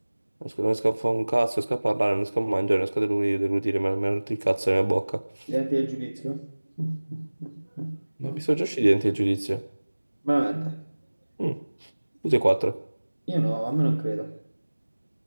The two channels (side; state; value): both; inverted; correlation -1.00